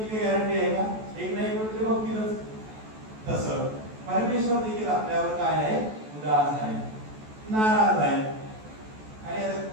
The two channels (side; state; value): left; late; 14 ms